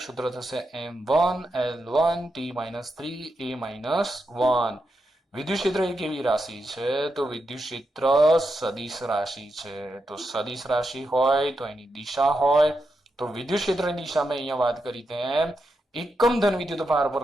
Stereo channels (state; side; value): normal; both; correlation 0.86